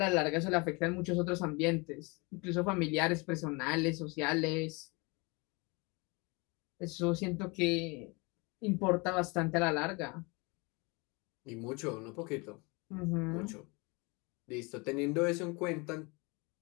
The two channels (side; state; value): right; quieter; 28.2 dB